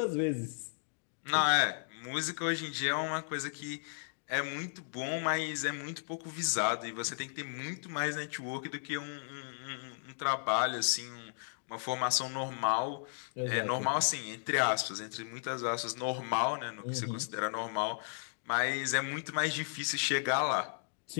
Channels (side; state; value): right; silent; digital silence